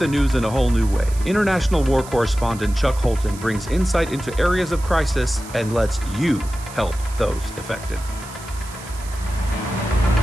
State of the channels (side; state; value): right; noise; hiss, 17 dB below the sound